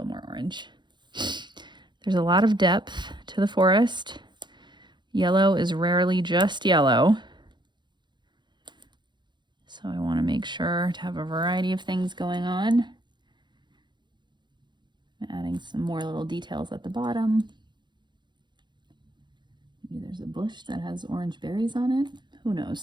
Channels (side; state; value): left; late; 0.22 ms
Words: more orange. There's a lot of depth to the forest. Yellow is rarely just yellow. So I want to make sure to have a variety of things going on. I'm adding some more little details at the bottom. Maybe there's a bush that has orange berries on it. Who